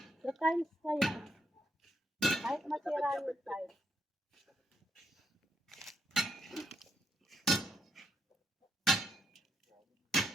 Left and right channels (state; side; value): normal; both; correlation 0.79